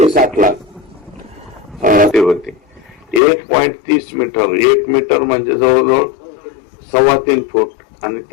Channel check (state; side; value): drops out; right; at 3.2 s